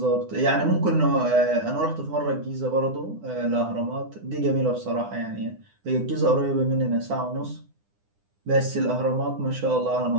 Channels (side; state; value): left; late; 9.9 ms